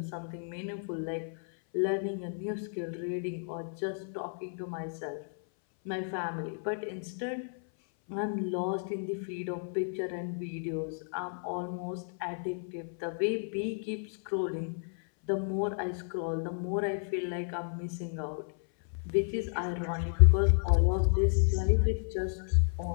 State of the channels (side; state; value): right; silent; 56 dB below the other